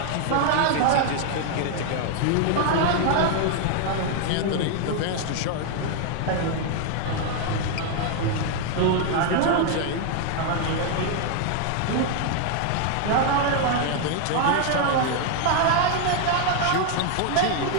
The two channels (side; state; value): both; different; correlation 0.00